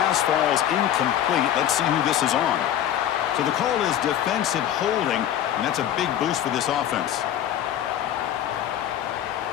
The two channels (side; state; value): right; quieter; 11.0 dB